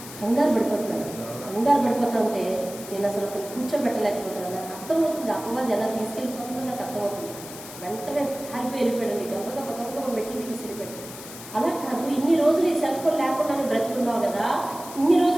కంగారు పడిపోతా ఉంటే నేను అసలు అతను కూర్చోబెట్టలేకపోతున్నాను. నాకు అర్థమవుతుంది అపవాది ఎలా తీసుకెళ్ళిపోతుందో నాకు అర్థమవుతుంది. వెంటనే పారిపోయి వెళ్ళిపోయాడండి. గబ్బ మెట్లు దిగి వెళ్ళిపోయాడు. అలా కాదు, ఇన్ని రోజులు ఈ సెల్ ఫోన్ లేకుండానే బ్రతుకున్నావు కదా, ఇన్ని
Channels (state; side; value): noise; left; hiss, 14 dB below the sound